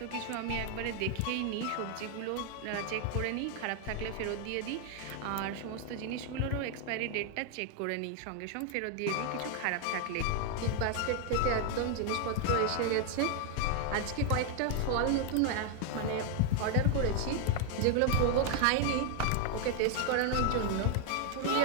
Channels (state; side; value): different; both; correlation 0.00